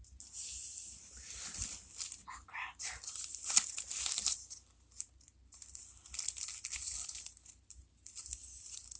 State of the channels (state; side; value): identical; both; correlation 1.00